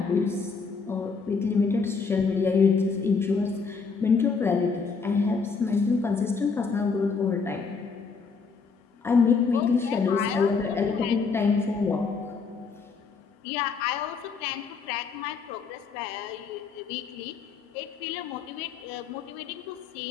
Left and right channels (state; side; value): quieter; right; 5.0 dB